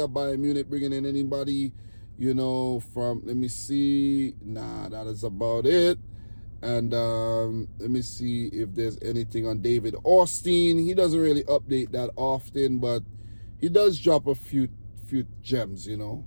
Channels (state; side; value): inverted; both; correlation -1.00